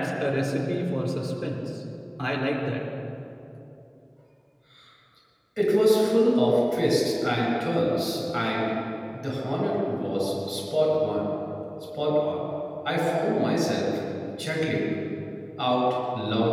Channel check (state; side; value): identical; both; correlation 1.00